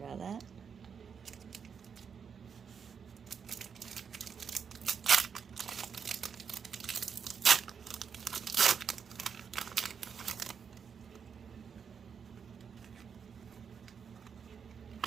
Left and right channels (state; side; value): quieter; left; 6.7 dB